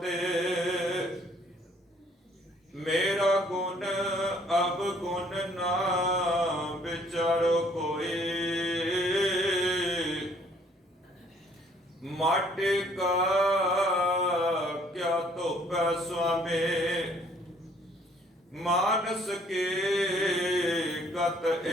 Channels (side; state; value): both; normal; correlation 0.62